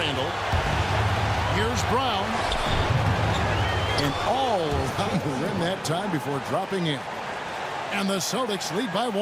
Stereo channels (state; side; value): identical; both; correlation 1.00